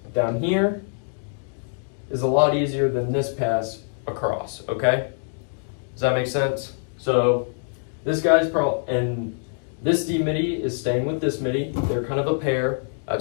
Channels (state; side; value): silent; right; digital silence